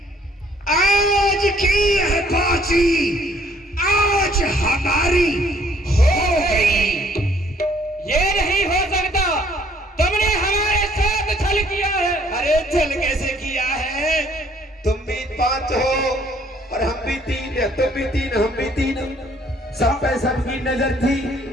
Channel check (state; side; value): normal; both; correlation 0.62